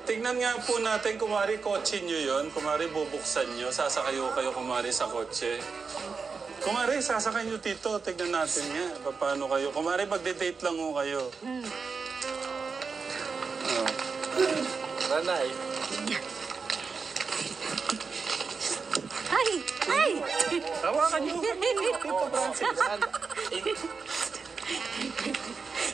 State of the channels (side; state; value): left; quieter; 5.0 dB